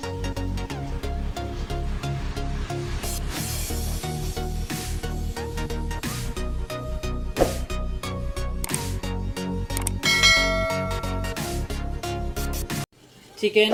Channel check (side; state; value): both; identical; correlation 1.00